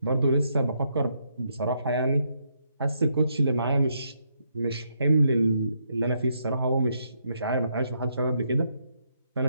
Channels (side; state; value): both; inverted; correlation -0.77